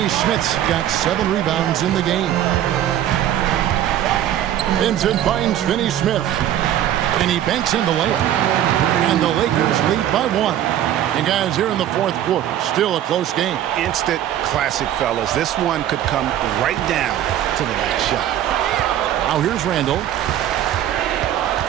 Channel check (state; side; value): quieter; left; 11.6 dB